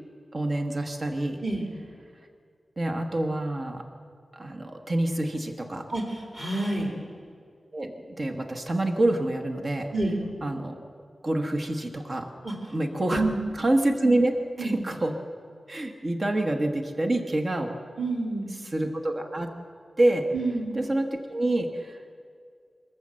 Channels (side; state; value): both; normal; correlation 0.96